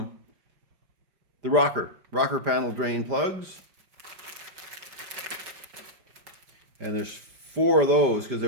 The rocker panel drain plugs. And there's 4 of those because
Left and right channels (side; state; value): left; late; 5.3 ms